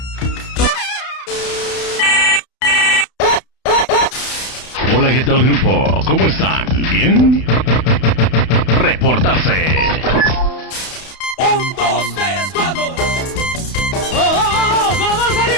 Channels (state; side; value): late; right; 31 ms